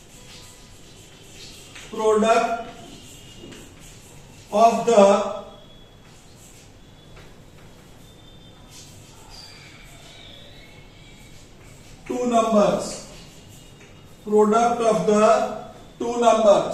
product of the two numbers. Product of the two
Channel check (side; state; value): both; identical; correlation 1.00